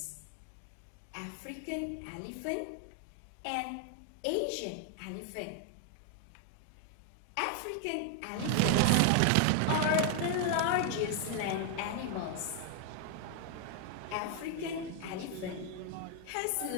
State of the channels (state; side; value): different; both; correlation 0.00